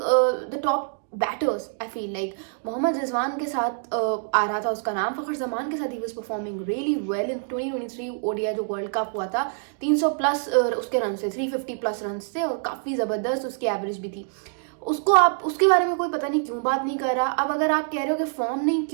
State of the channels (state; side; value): silent; left; digital silence